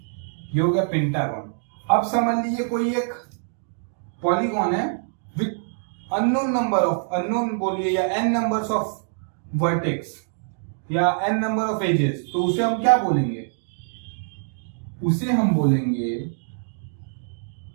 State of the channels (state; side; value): silent; left; digital silence